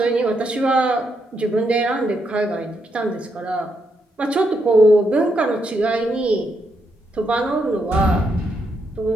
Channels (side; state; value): both; normal; correlation 0.79